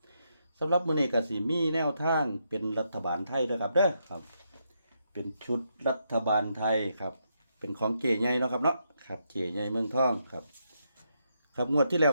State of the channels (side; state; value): both; inverted; correlation -0.80